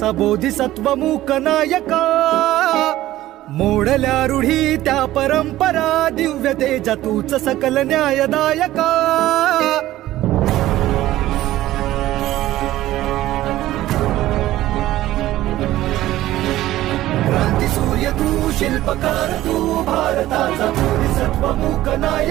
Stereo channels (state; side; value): quieter; left; 15.1 dB